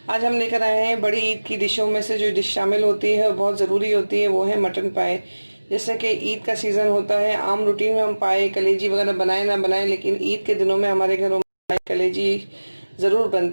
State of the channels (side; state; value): both; inverted; correlation -1.00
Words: आज हम लेकर आए हैं बड़ी ईद की डिशों में से जो डिश शामिल होती है और बहुत ज़रूरी होती है, वो है मटन पाए। जैसे कि ईद का सीज़न होता है, आम रूटीन में हम पाए कलेजी वगैरह बनाए ना बनाएं, लेकिन ईद के दिनों में हमारे घरों में पाए कलेजी ज़रूर